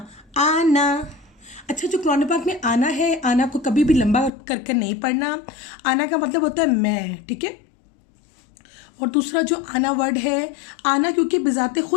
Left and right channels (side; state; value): right; drops out; at 4.3 s